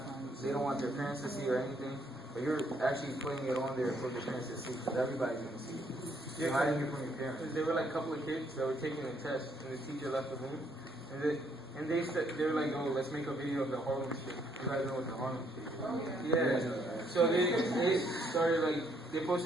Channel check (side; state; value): both; normal; correlation 0.70